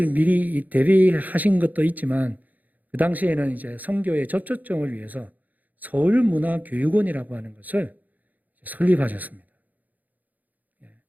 미리 대비하신 것도 있지만 그 당시에는 이제 선교의 접촉점을 위해서 서울문화교육원이라고 하는 것을 설립하셨습니다.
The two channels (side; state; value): left; late; 0.081 ms